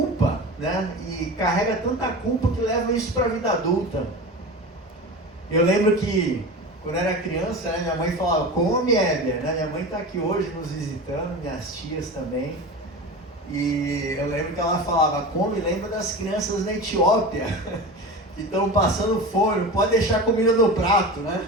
né? E carrega tanta culpa que leva isso para a vida adulta. Eu lembro que quando eu era criança, né, minha mãe falava, come, Élia, né? Minha mãe está aqui hoje nos visitando, minhas tias também. E eu lembro que ela falava, come, lembra das crianças na Etiópia, que estão passando fome, não pode deixar comida no prato, né?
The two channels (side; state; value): both; normal; correlation 0.30